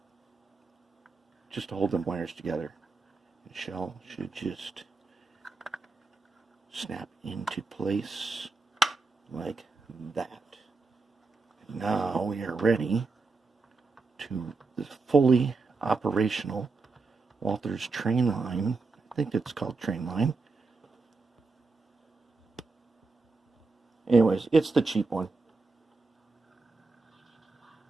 just to hold them wires together. The shell should just snap into place like that. Now we are ready to the fully operational Walthers Trainline. I think it's called Trainline. Anyways, it's the cheap one,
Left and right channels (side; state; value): left; quieter; 4.0 dB